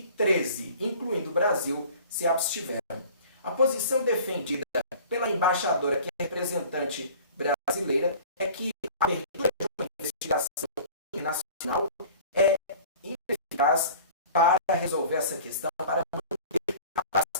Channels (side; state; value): both; inverted; correlation -0.45